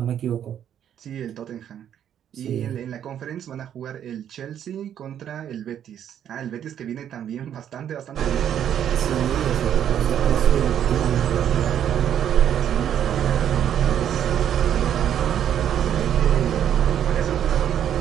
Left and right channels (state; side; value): quieter; left; 9.8 dB